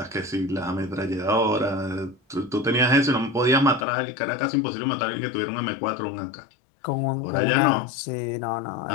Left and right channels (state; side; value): drops out; right; at 3.9 s